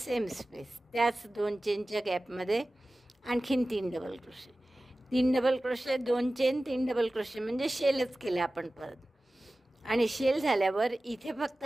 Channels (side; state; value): both; normal; correlation 0.96